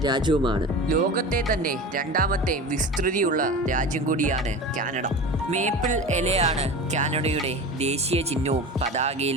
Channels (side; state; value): both; normal; correlation 0.32